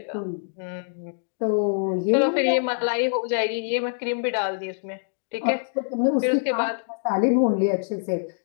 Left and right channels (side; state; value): right; silent; digital silence